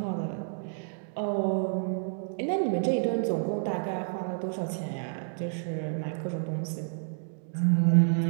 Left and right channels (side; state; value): left; silent; digital silence